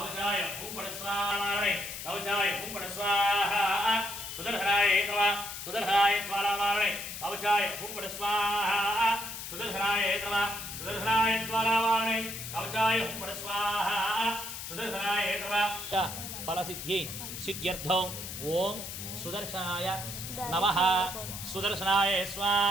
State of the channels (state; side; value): noise; left; hiss, 8 dB below the sound